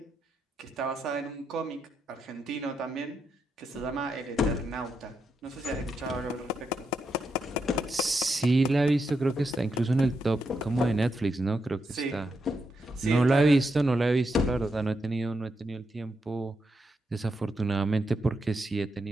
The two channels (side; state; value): both; normal; correlation 0.83